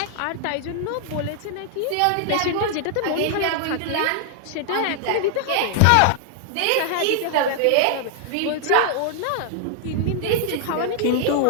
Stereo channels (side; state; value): both; different; correlation 0.00